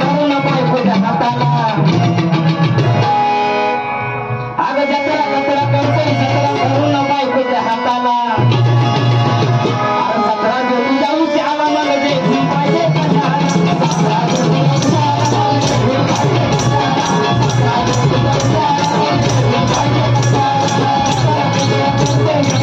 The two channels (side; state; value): both; identical; correlation 1.00